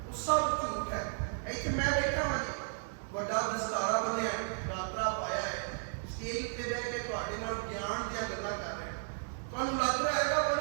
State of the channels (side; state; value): left; silent; 55 dB below the other